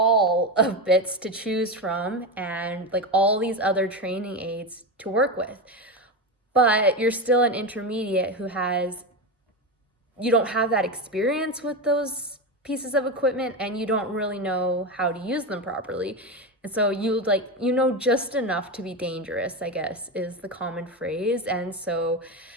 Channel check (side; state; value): both; normal; correlation 0.17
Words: of bits to choose from and like all these other training aids to work with. But you're still an intermediate who you don't have that experience with those pieces of equipment and you don't really know how to use them properly. And so you know just enough to be dangerous, I guess, is the common phrase. And so